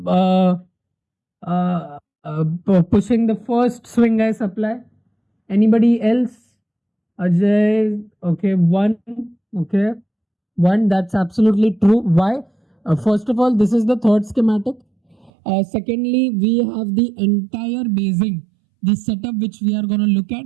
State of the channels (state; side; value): drops out; left; at 15.3 s